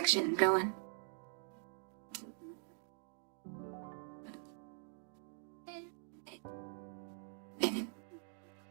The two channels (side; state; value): left; silent; digital silence